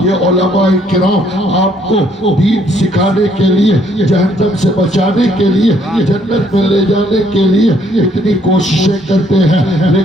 یہ علماء کرام آپ کو دین سکھانے کے لیے، جہنم سے بچانے کے لیے، جنت میں لے جانے کے لیے اتنی کوششیں کرتے ہیں،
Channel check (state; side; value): normal; both; correlation 0.66